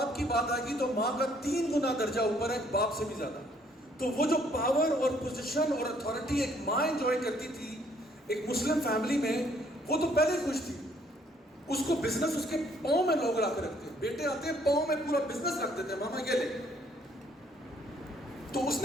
کی بات آئے گی تو ماں کا 3 گنا درجہ اوپر ہے باپ سے بھی زیادہ۔ تو وہ جو پاور اور پوزیشن اور اتھارٹی ایک ماں انجوائے کرتی تھی ایک مسلم فیملی میں، وہ تو پہلے خوش تھی، اس کو بزنس اس کے پاؤں میں لوگ لا کے رکھتے ہیں، بیٹے آتے ہیں پاؤں میں پورا بزنس رکھ دیتے ہیں، ماما یہ لے۔ تو اس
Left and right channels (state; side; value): normal; both; correlation 0.65